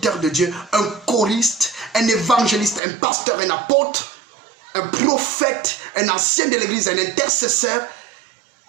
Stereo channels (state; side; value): drops out; left; at 2.8 s